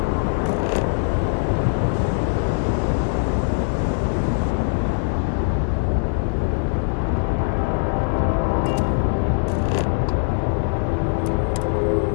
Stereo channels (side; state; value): right; silent; digital silence